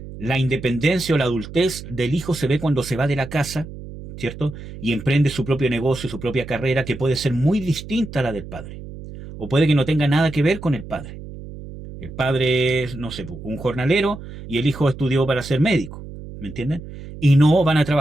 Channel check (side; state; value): right; noise; hum, 13 dB below the sound